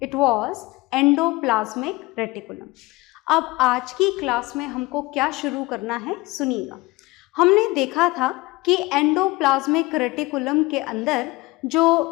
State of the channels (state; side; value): quieter; right; 22.0 dB